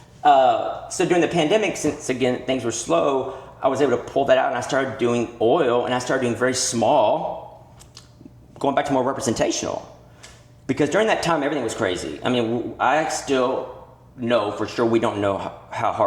So during the pandemic, since, again, things were slow, I was able to pull that out, and I started doing oil, and I started doing very small, going back to more representational. Because during that time, everything was crazy. I mean, I still know for sure we don't know how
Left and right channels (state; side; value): identical; both; correlation 1.00